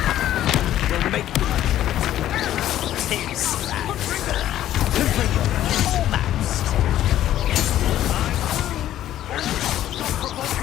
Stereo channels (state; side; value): quieter; right; 12.5 dB